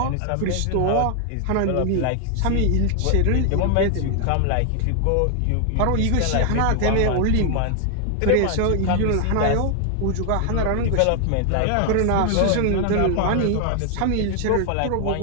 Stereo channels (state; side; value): different; both; correlation 0.00